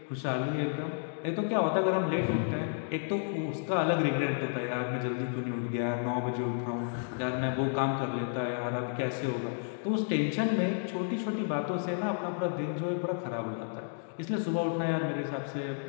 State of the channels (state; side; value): silent; right; digital silence